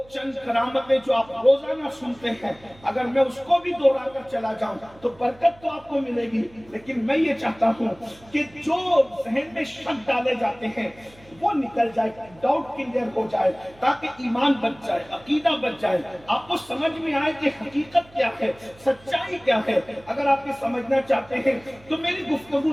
چند کرامتیں جو آپ روزانہ سنتے ہیں اگر میں اس کو بھی دوہرا کر چلا جاؤں تو برکت تو آپ کو ملے گی، لیکن میں یہ چاہتا ہوں کہ جو ذہن میں شک ڈالے جاتے ہیں وہ نکل جائے، ڈاؤٹ کلیئر ہو جائے، تاکہ ایمان بچ جائے، عقیدہ بچ جائے، آپ کو سمجھ میں آئے کہ حقیقت کیا ہے، سچائی کیا ہے۔ اگر آپ یہ سمجھنا چاہتے ہیں تو میری گفتگو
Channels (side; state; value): right; noise; hum, 25 dB below the sound